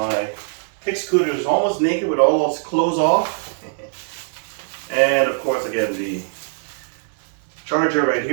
KickScooter is almost naked with all those clothes off. And of course, again, the charger right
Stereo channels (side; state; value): left; silent; digital silence